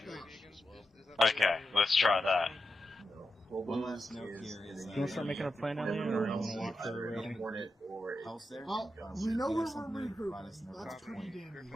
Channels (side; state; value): both; normal; correlation 0.88